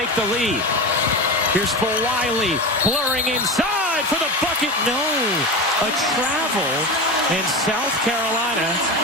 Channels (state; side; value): normal; both; correlation 0.23